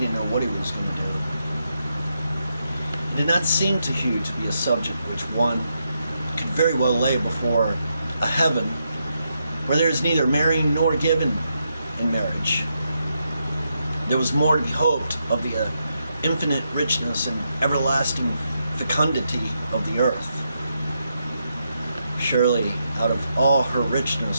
know what he was going to do. It did not seem to Hugh to be a subject which one could very well lay before a heaven where there is neither marrying nor given in marriage. There was more to be hoped of the infinite richness and everlasting fecundity of the earth. Surely, out of all her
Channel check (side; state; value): both; inverted; correlation -0.82